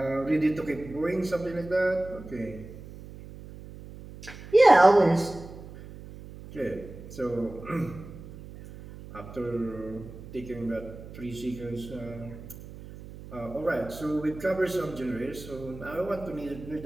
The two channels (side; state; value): right; noise; hum, 15 dB below the sound